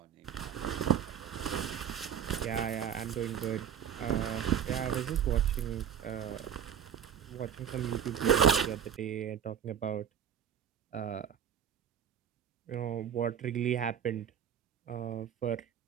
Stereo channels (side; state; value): left; quieter; 8.6 dB